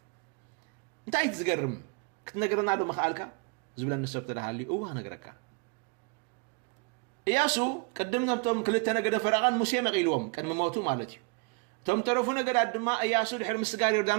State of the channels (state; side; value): quieter; left; 32.5 dB